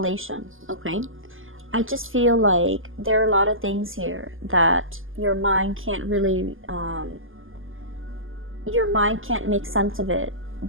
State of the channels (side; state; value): left; late; 0.59 ms